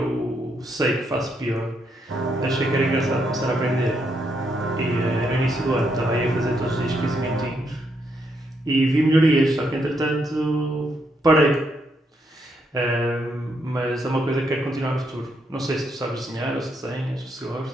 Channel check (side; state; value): both; normal; correlation 0.77